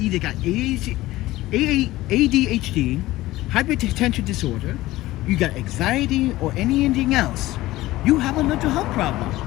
got ADHD, hypertension disorder, you got anxiety, or anything else. You have a mental health problem.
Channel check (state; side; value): quieter; right; 17.3 dB